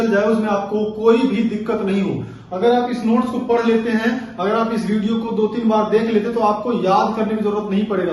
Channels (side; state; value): both; identical; correlation 1.00